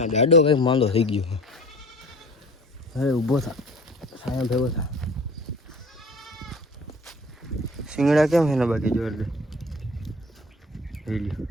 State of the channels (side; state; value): both; normal; correlation 0.45